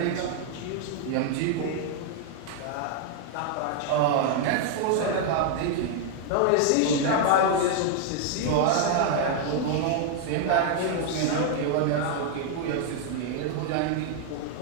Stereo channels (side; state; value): both; different; correlation 0.00